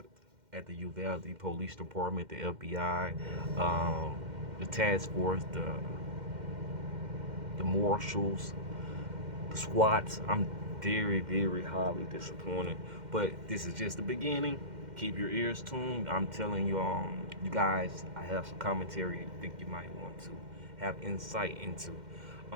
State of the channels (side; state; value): left; late; 2.1 ms